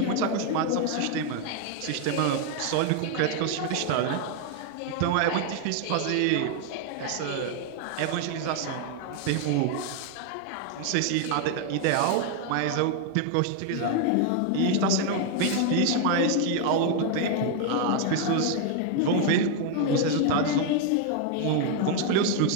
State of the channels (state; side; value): different; both; correlation 0.01